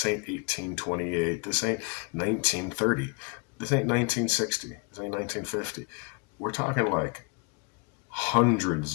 ain't 1828. This ain't 1930. This ain't 1960. This ain't 1950. We're talking like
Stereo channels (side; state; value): right; quieter; 29.6 dB